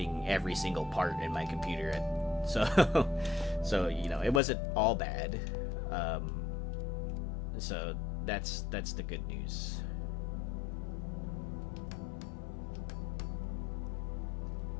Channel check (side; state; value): right; drops out; at 4.4 s